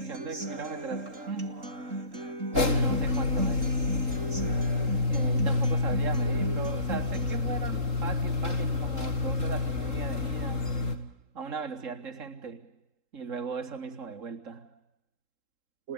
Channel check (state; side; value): late; left; 3.8 ms